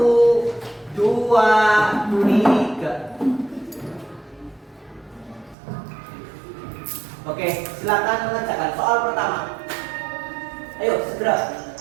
2, 3. Oke, silakan mengerjakan soal pertama. Ayo, segera.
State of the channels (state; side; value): drops out; left; at 5.6 s